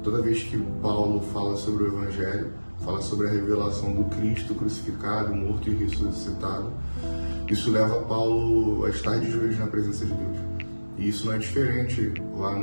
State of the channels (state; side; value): inverted; both; correlation -1.00